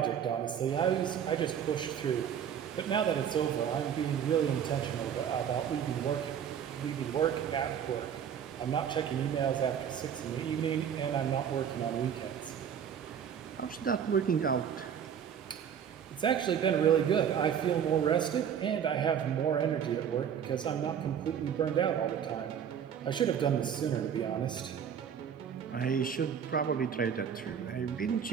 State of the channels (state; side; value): quieter; left; 8.3 dB